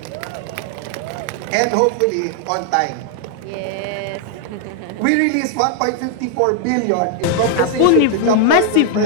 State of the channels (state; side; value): different; both; correlation 0.00